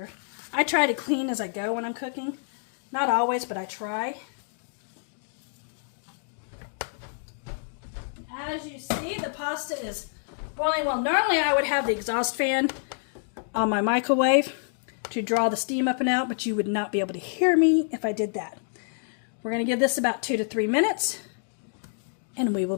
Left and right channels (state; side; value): silent; right; digital silence